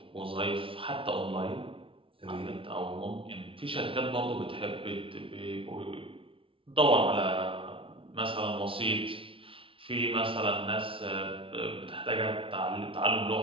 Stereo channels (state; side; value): late; left; 0.26 ms